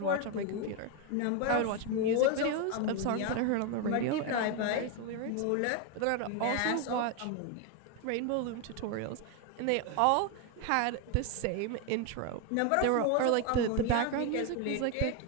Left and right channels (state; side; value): different; both; correlation 0.01